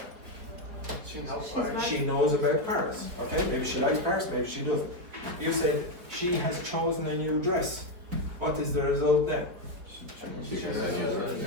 She knows about Paris. Okay, maybe she likes Paris, maybe she doesn't. You said, she has chosen a new dress. What is the result then?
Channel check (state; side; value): late; left; 4.8 ms